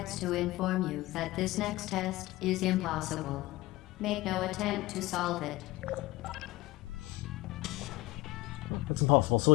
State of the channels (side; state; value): right; quieter; 18.9 dB